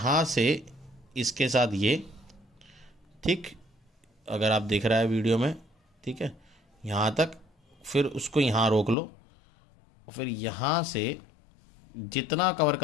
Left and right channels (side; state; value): right; drops out; at 9.0 s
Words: से इसके साथ ये, ठीक, अगर आप देख रहा है वीडियो में, ठीक है, यहाँ तक, फिर उसको यहाँ रोक लो, और फिर यहाँ से जितना कवर